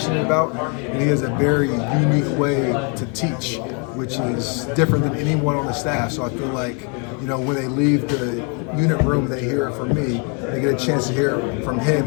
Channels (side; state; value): right; quieter; 36.8 dB